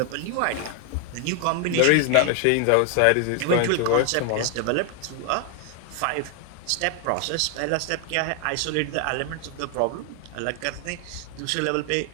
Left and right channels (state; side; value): different; both; correlation 0.00